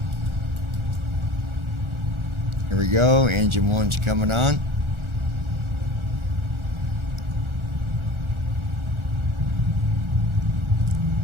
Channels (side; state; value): left; late; 1.4 ms